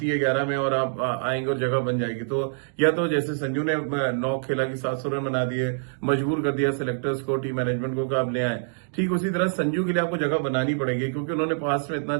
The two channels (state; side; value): silent; left; digital silence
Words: है 11 में और आप आएंगे और जगह बन जाएगी। तो या तो जैसे संजू ने 9 खेला कि 700 रन बना दिए, मजबूर कर दिया सिलेक्टर्स को, टीम मैनेजमेंट को कि आप ले आए, ठीक उसी तरह संजू के लिए आपको जगह बनानी पड़ेगी क्योंकि उन्होंने पास्ट में इतना